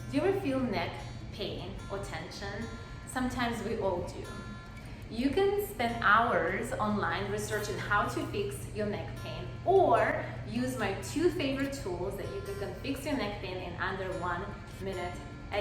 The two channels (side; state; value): both; identical; correlation 1.00